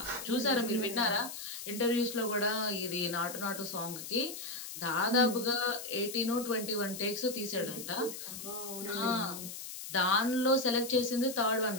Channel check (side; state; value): left; noise; hiss, 9 dB below the sound